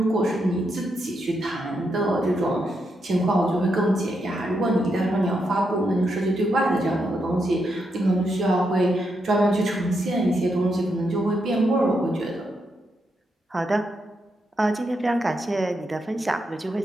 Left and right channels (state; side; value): normal; both; correlation 0.82